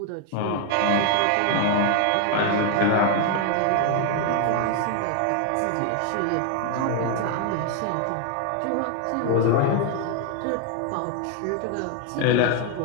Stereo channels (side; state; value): both; different; correlation 0.01